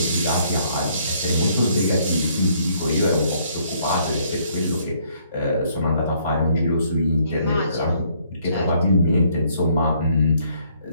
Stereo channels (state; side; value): inverted; both; correlation -0.66